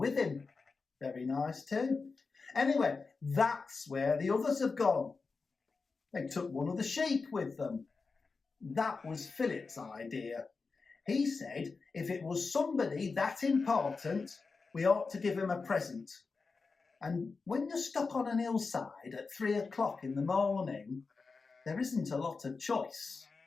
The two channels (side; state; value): right; quieter; 4.4 dB